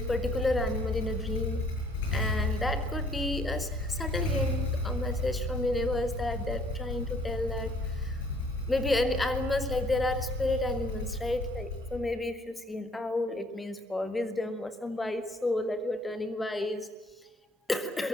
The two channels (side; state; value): both; normal; correlation 0.60